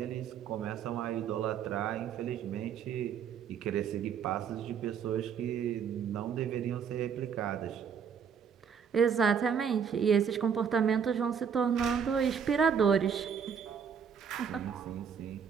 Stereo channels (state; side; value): quieter; left; 7.2 dB